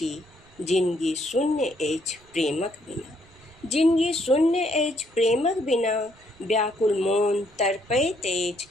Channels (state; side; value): noise; right; rumble, 27 dB below the sound